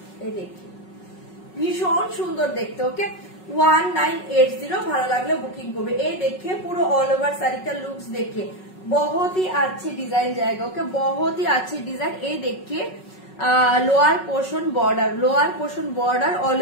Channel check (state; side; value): late; right; 5.4 ms